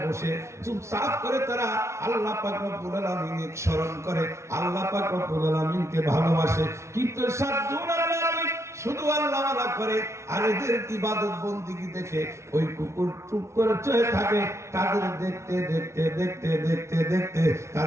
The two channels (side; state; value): left; late; 0.13 ms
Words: বসে চুপচাপ করে তারা আল্লাহ পাক রব্বুল আলামিনকে স্মরণ করে, আল্লাহ পাক রব্বুল আলামিনকে ভালোবাসে। কিন্তু সাতজন আল্লাহর ওলি শুধু আল্লাহওয়ালা করে, আর এদের ইবাদত বন্দেগী দেখে ওই কুকুর চুপ করে চয়ে থাকে। তাদের দেখতে দেখতে দেখতে দেখতে দেখতে